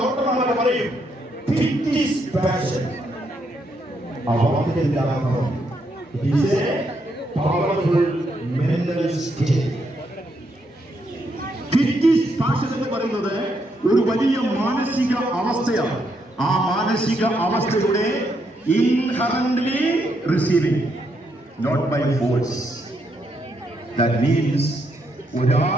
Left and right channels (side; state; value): both; normal; correlation 0.77